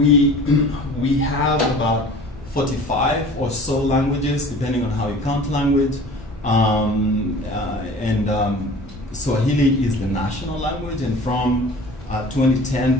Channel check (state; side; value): normal; both; correlation 0.43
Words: have about 45 or so languages, depending on how you count language. Swahili is the national language, and from 2010,